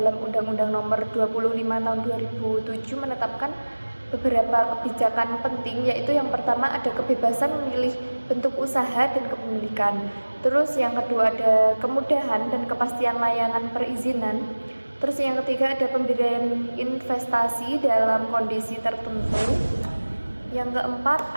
Undang-Undang Nomor 25 Tahun 2007 menetapkan beberapa kebijakan penting, yaitu yang pertama ada kebebasan memilih bentuk usaha dan kepemilikan. Terus yang kedua ada kemudahan dan kepastian layanan perizinan. Terus yang ketiga ada pemberian investasi dalam kondisi tertentu. Yang keempat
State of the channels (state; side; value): inverted; both; correlation -1.00